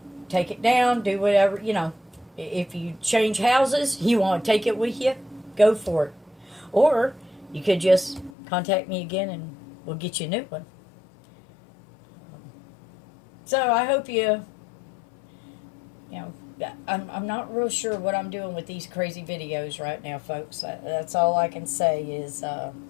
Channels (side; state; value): right; drops out; at 8.3 s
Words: take it down, do whatever, If you change houses, you want to take it with you, go for it. Or you could just contact me again and we'll get you a new one. So I hope you know, I'm not real sure what I'm doing with these crazy videos right now, folks. That's all I can say is